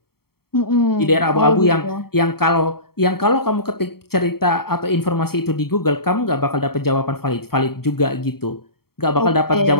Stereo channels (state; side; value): late; right; 0.95 ms